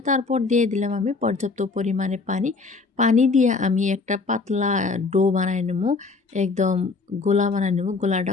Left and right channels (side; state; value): right; quieter; 4.1 dB